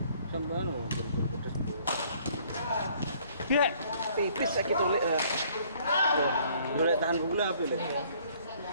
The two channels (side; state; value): both; inverted; correlation -0.60